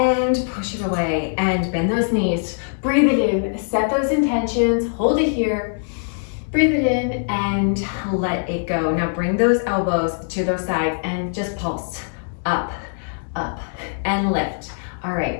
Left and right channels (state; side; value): silent; right; digital silence